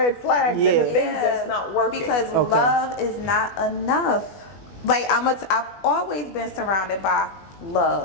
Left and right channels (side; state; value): right; late; 20 ms